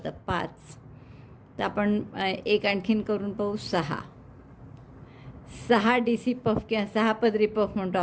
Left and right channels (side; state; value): both; identical; correlation 1.00